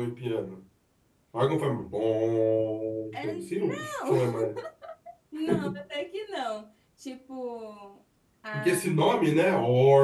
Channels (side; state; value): both; identical; correlation 1.00